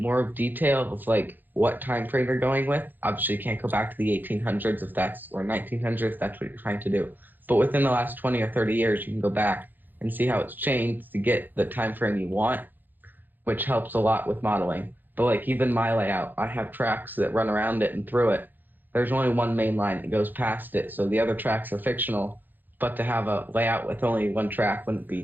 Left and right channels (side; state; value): left; late; 0.088 ms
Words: detail of like what time frame you're going with. Obviously, you can't go back to the 1800s if that's or 1900s if that's what you're trying to do. But within the last 20 or 30 years, you can go back and see how it's changed to get the time frame you want, which helps a lot with modeling. But like even my layout, I have tracks that run around it and through it. There's only one main line that goes past it, so the other tracks are fictional. But to have a layout with only one track wouldn't